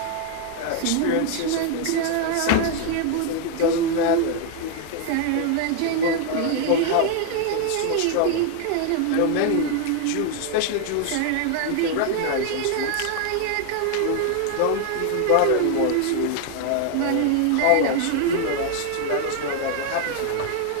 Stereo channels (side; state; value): both; different; correlation 0.00